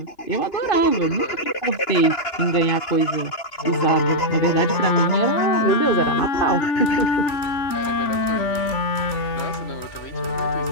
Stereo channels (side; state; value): right; late; 2.9 ms